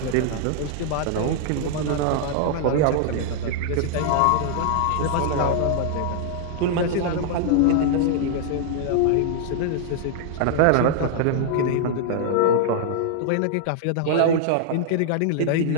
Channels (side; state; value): both; different; correlation -0.01